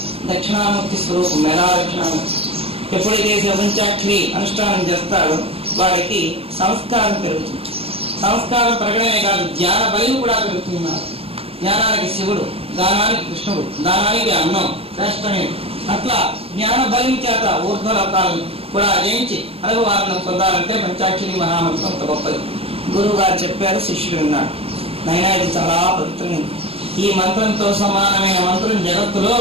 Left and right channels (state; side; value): late; left; 0.28 ms